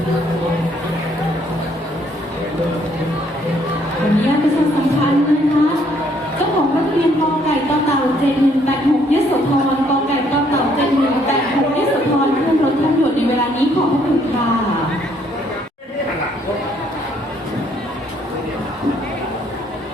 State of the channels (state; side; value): normal; both; correlation 0.67